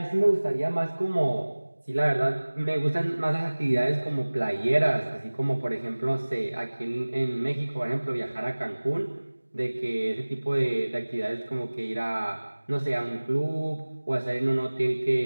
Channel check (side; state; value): both; inverted; correlation -1.00